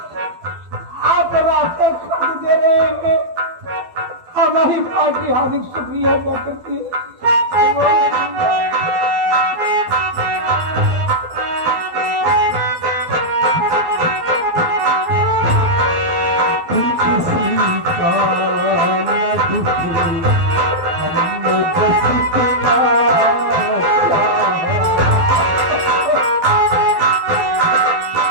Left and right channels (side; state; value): left; late; 12 ms